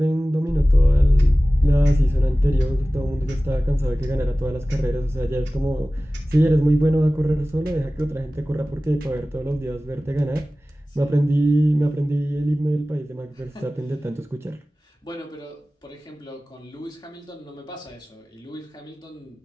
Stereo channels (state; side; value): normal; both; correlation 0.97